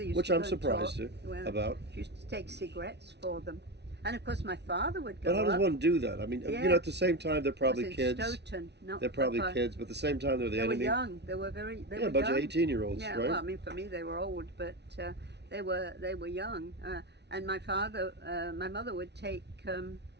used which to I'm go and talk. surprised Well, about. she used to take cigarettes for them. And of course, my father would But go how does up. one do that? I mean, Yeah, at the same time, they're that was probably in kids. Stoughton, not They're far, probably far. kids, but at the same time, they're the They were enemy. young. They Yeah, were a bunch of young. 18-year-olds, Yeah, right? well, I mean, for me, they were old, but they were young. And my mother would take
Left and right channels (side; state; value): left; late; 0.50 ms